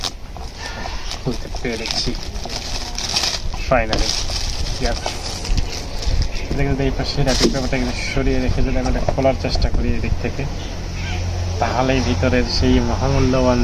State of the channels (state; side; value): identical; both; correlation 1.00